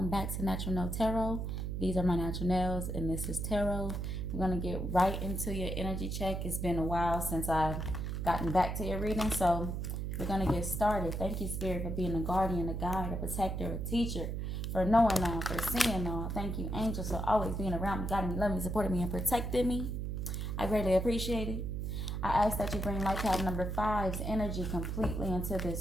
back to Natural Nail Tarot. These are my natural nails, and this is tarot. We're going to get right into your energy check. It's been a while since I've gotten back to your reading, so we're going to get started. Thank you, Spirit, for being a guardian, a guide, a protector, a teacher, for knowing all, for seeing all. Thank you, angels, for always being around me, guiding me, loving me, supporting me, and protecting me. I greatly appreciate it. I ask that you bring life path number 5's energy completely into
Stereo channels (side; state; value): right; noise; hum, 3 dB below the sound